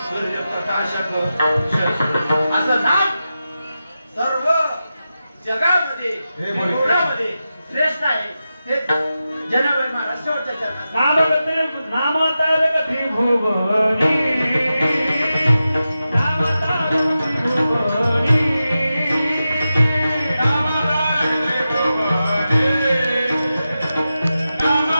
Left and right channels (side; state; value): both; inverted; correlation -0.91